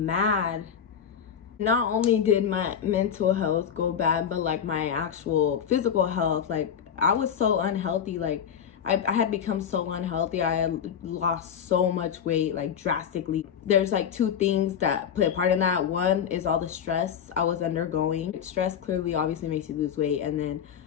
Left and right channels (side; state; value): right; quieter; 8.1 dB